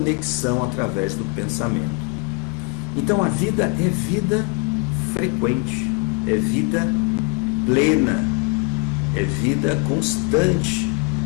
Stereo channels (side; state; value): right; quieter; 30.0 dB